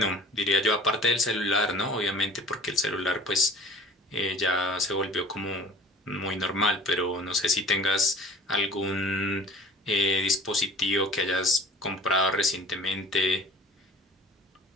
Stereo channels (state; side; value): normal; both; correlation 0.46